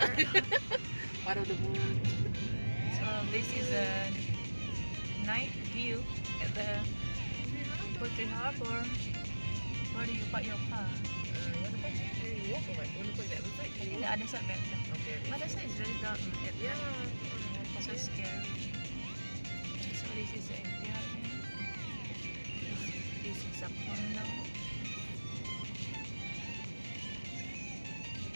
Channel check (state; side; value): inverted; both; correlation -1.00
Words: Part of the moon. So this is a night view at the Puteri Harbour. Where do you park your car? You want to park here? You walk or what? You want to park the other side? I think the other side better. Okay. But the side is very dark. Yeah. So scary. So this is the area. This is a condo.